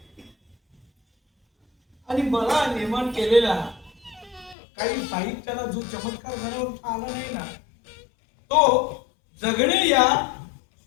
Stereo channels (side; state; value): right; drops out; at 4.5 s